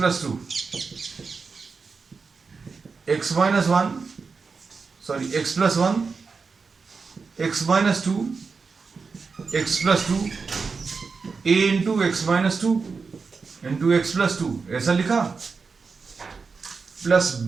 two, x minus one sorry x plus one x minus two x plus two A into x minus two into x plus two, ऐसा लिखा, plus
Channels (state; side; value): quieter; left; 4.9 dB